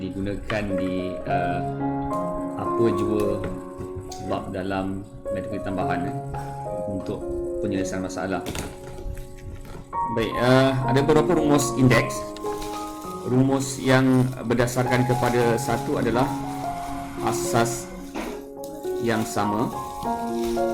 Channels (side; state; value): both; identical; correlation 1.00